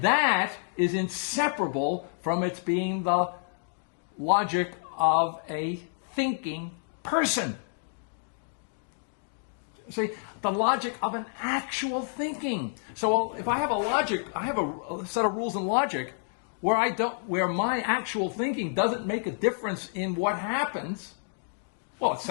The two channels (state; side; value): silent; right; digital silence